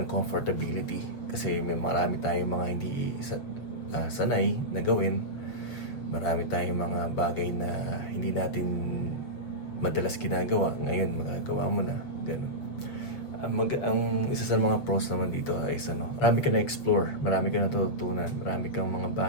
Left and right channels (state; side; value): late; right; 7.3 ms